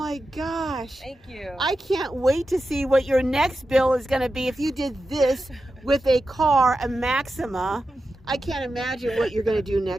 gosh. Thank you. I can't wait to see what your next build is going to be if you did this with a car, a Maxima. I can't imagine what you're going to do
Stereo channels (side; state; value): both; normal; correlation 0.91